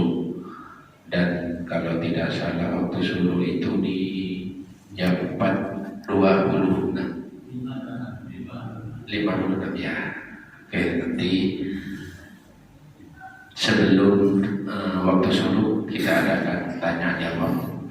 Dan kalau tidak salah waktu subuh itu di jam 4.56 ya. Oke, nanti sebelum waktu subuh kita adakan tanya jawab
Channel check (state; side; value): identical; both; correlation 1.00